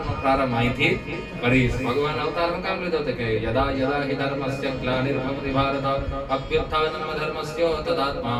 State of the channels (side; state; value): both; identical; correlation 1.00